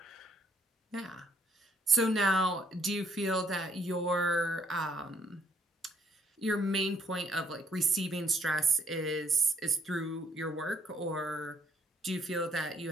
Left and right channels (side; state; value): both; normal; correlation 0.66